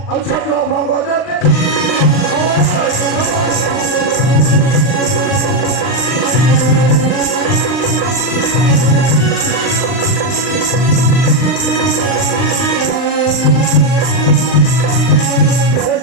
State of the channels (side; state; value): right; late; 39 ms